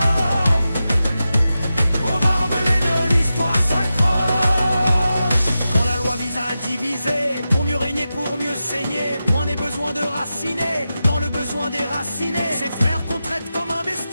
aux barbelés de l'histoire s'accroche. Quand la loi vise à diviser, pour mieux régner, pour mieux saigner, point n'est besoin de raciner, dans le besoin déraciné. Ces frères qu'on traite comme un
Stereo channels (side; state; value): both; inverted; correlation -0.92